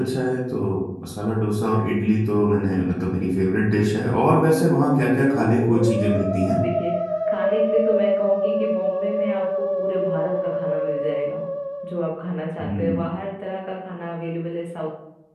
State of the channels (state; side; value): identical; both; correlation 1.00